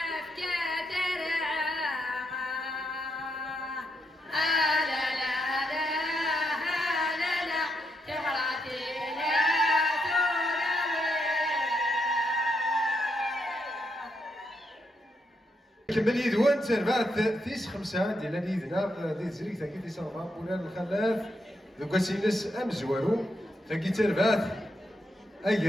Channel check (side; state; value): both; normal; correlation 0.80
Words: ترعى لا لا لا لا لا تغرتي لا كمل يدوان تربعت تيس خمسة ديال اليدنا ديال زريك ثاكي تيس ربعة بولان الخلاف دوكا سينس أمزوارو ثاكي تربعت